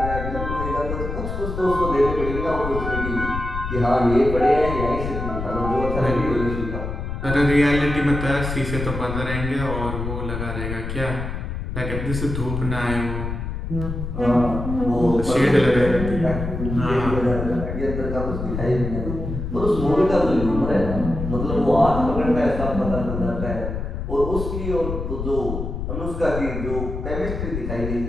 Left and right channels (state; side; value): noise; left; rumble, 5 dB below the sound